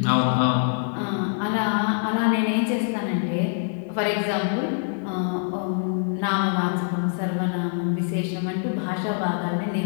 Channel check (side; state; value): right; silent; 62 dB below the other